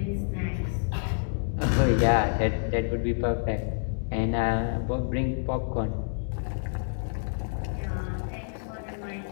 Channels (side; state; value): right; silent; digital silence